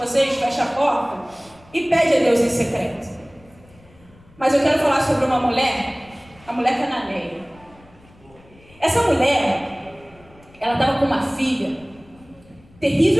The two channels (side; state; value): left; noise; rumble, 27 dB below the sound